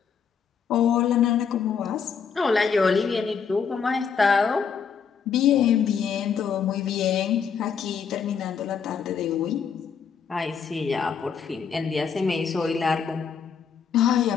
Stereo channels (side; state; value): right; quieter; 6.6 dB